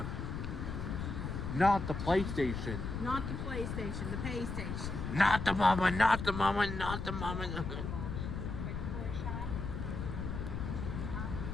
Not the PlayStation. Not the PlayStation, the pay station. Not the mama, not the mama, not the mama.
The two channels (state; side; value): noise; left; rumble, 4 dB below the sound